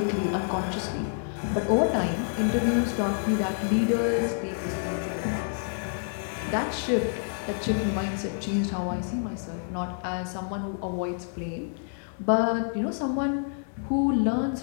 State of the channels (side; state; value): right; silent; digital silence